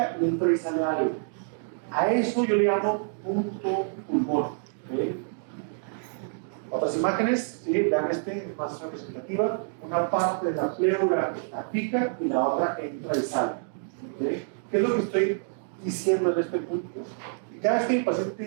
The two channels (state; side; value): silent; left; digital silence